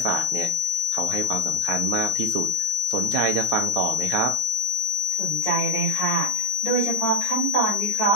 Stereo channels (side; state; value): left; late; 14 ms